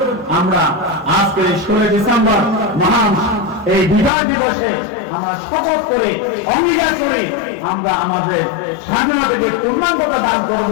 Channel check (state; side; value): drops out; right; at 4.1 s